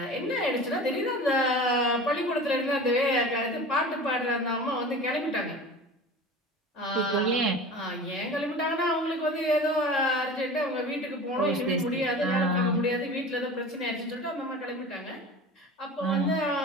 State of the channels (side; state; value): both; normal; correlation 0.36